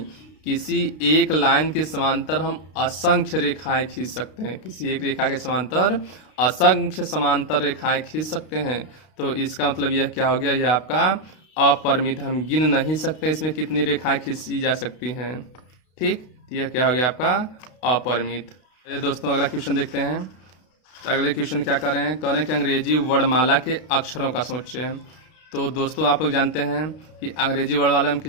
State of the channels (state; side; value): late; right; 32 ms